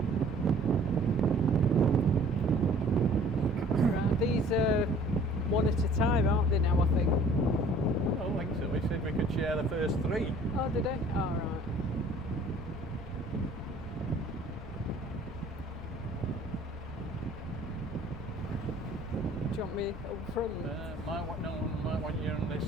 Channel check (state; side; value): normal; both; correlation 0.53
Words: These are one at a time, aren't they now, I think? I don't think so. We said we could share the first three. Oh, did they? Oh, right. Do you want me up front? Might want you on this